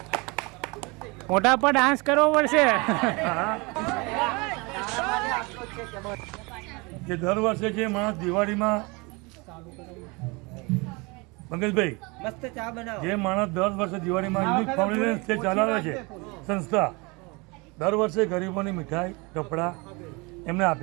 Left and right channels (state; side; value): quieter; left; 27.2 dB